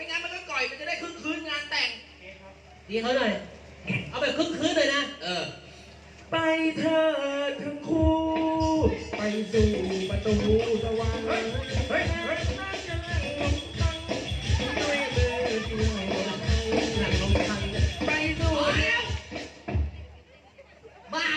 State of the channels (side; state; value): both; identical; correlation 1.00